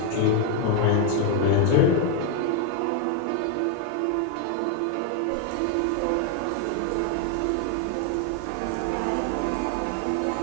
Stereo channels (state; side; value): different; both; correlation 0.01